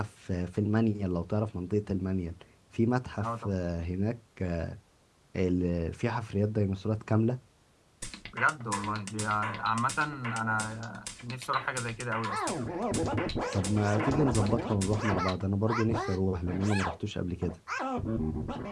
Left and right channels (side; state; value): both; identical; correlation 1.00